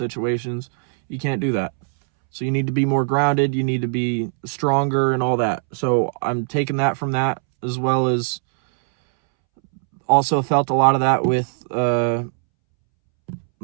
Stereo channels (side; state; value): left; silent; 65 dB below the other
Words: You can't do that. So you need to be more grounded. You need to be stronger and all that. So I'm taking that from that, as well as also felt a lot of that with